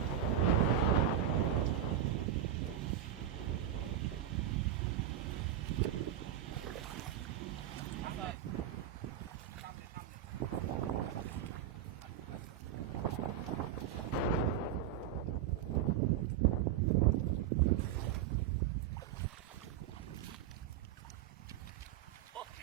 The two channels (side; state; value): left; quieter; 10.3 dB